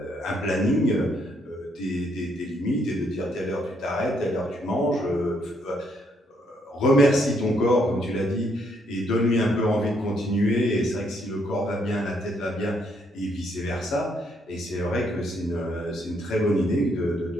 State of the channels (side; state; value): both; normal; correlation 0.72